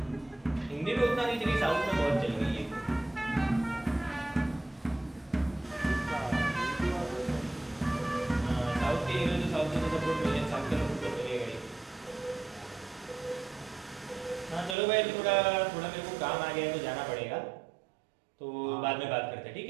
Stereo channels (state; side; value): drops out; left; at 14.8 s